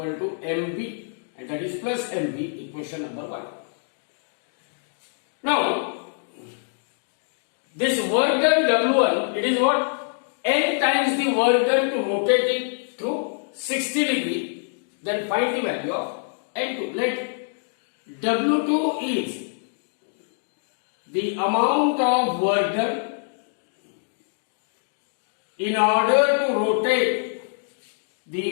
to mv, and that is plus mv, equation number 1. Now, this work done W1, it is what? N times the work done to rotate it through 60 degree. Then find the value of N2. Let W2 is the amount of work done in order to rotate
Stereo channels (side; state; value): right; silent; digital silence